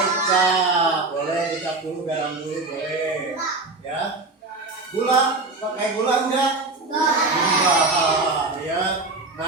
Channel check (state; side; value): quieter; left; 3.4 dB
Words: Boleh dikasih dulu, garam dulu, boleh. Ya. Gula, pakai gula enggak? Enggak. Ya.